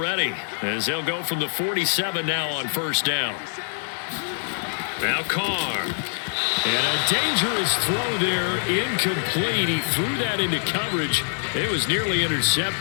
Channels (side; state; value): right; silent; digital silence